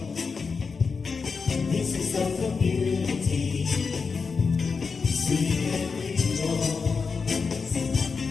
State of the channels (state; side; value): quieter; right; 5.1 dB